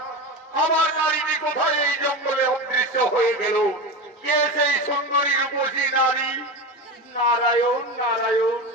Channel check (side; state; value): both; normal; correlation 0.23